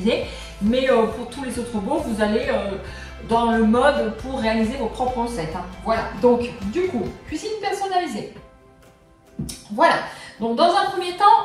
mais pour tous les autres robots, vous allez dans le mode pour réaliser vos propres recettes. Hein. Voilà, donc du coup, cuisine personnalisée. Voilà, donc dans un premier temps,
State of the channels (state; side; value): identical; both; correlation 1.00